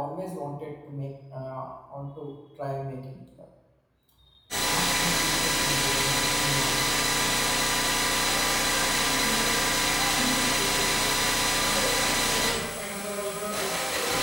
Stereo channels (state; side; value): identical; both; correlation 1.00